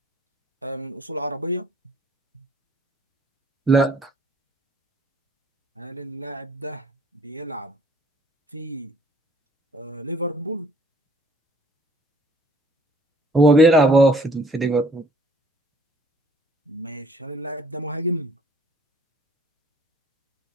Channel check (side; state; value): both; normal; correlation 0.58